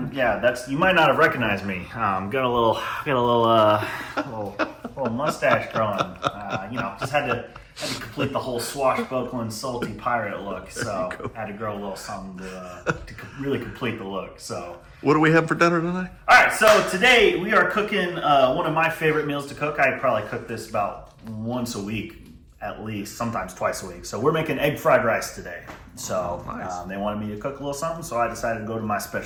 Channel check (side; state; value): both; identical; correlation 1.00